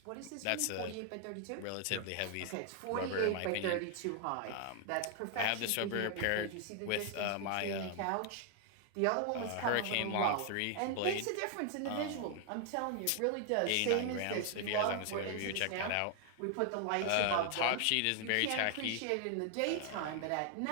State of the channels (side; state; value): both; different; correlation 0.00